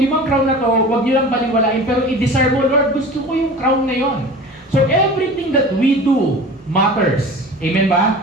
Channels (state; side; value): normal; both; correlation 0.37